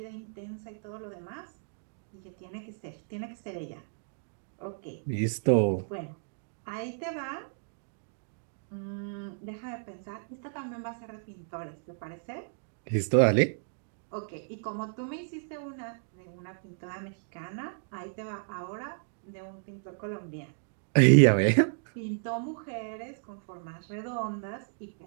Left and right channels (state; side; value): silent; left; digital silence